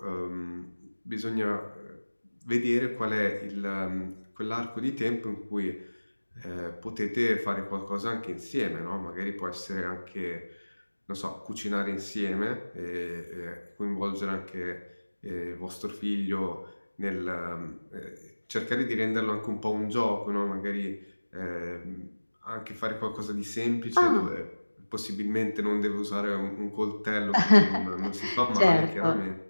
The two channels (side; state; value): both; inverted; correlation -1.00